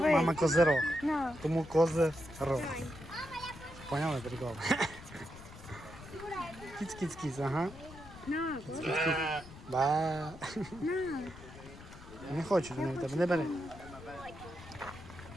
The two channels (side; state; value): left; noise; rumble, 16 dB below the sound